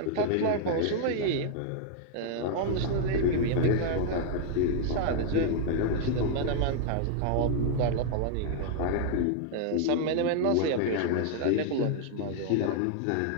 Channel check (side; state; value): both; different; correlation 0.00